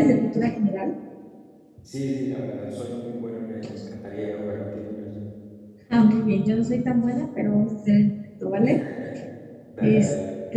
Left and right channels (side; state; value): both; identical; correlation 1.00